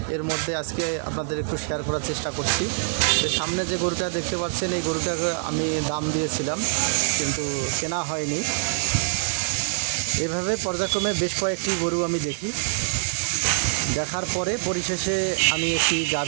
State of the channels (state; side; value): silent; left; digital silence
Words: এর মধ্যে আজকে আপনাদের একটু শেয়ার করার চেষ্টা করছি। তো সামনে যে গরুটা দেখতে পাচ্ছেন, এই গরুটাকে আমি দাম দিয়েছিলাম কিন্তু কেনা হয়নি। এভাবে পর্যায়ক্রমে বেশ কয়েকটি গরু আমি দেখার পরে পরিশেষে আমি একটি